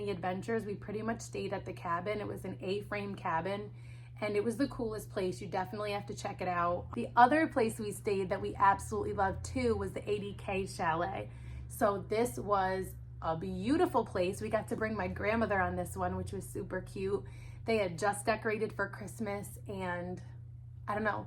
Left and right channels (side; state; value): both; identical; correlation 1.00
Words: adventures. We pretty much stayed at the cabin. It was an A-frame cabin and it was the coolest place. You definitely have to check it out. The other place we stayed that we absolutely loved too was the 80K Chalet. So this was a beautiful place. We got to bring my grandmother on this one, which was super cute. They had just decorated for Christmas and I don't know,